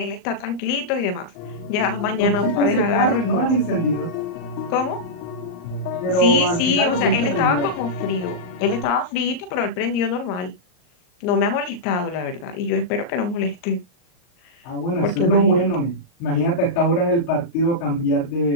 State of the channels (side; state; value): right; late; 39 ms